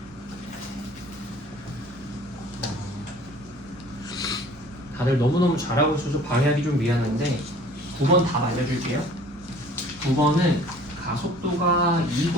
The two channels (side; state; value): both; normal; correlation 0.50